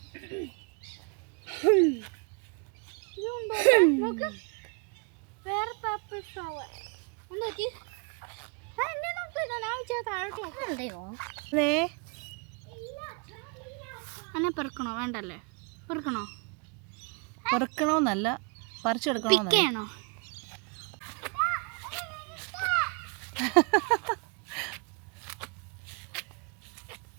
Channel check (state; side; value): quieter; left; 34.1 dB